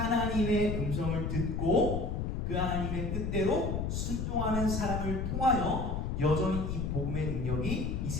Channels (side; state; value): left; noise; rumble, 1 dB below the sound